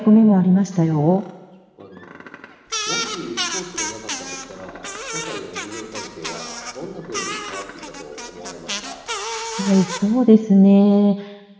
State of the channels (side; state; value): both; identical; correlation 1.00